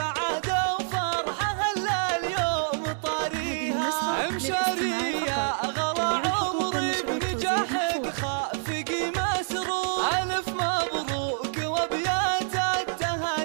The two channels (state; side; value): silent; left; digital silence